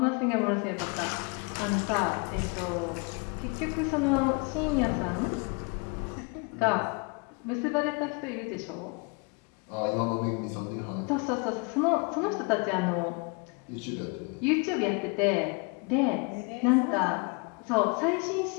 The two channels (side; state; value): right; quieter; 32.1 dB